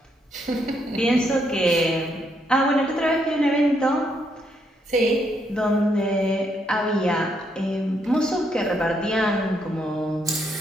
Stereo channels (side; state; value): both; normal; correlation 0.75